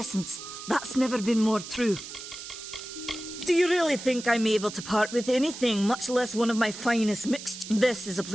That's never been more true. Do you really think I'm able to part with anything, much less one of my finest mixtures? This is a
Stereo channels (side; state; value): right; noise; hiss, 11 dB below the sound